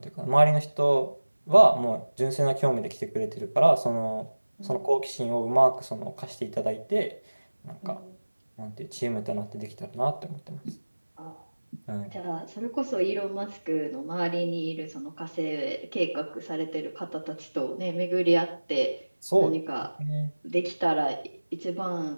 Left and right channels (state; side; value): inverted; both; correlation -1.00